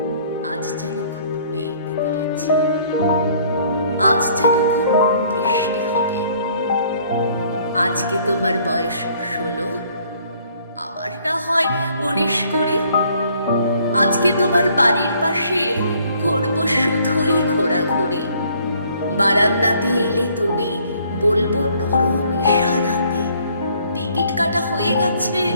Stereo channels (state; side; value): inverted; both; correlation -0.61